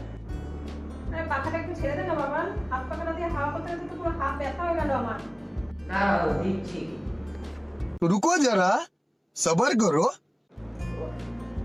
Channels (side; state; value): both; identical; correlation 1.00